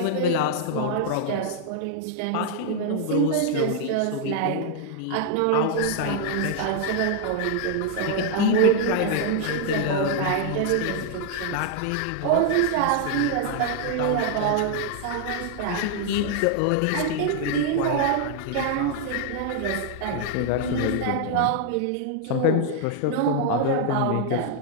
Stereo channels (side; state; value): both; different; correlation 0.00